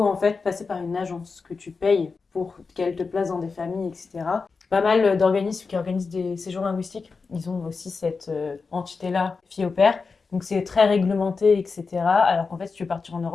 en fait passer par une agence que tu payes pour qu'elle te place dans des familles, etc. Pas mal d'organismes qui organisent des séjours linguistiques. Ils ont aussi cette entité-là, fille au pair. Donc c'est très réglementé, etc. Alors qu'en fait, si tu veux partir en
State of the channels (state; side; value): quieter; right; 4.6 dB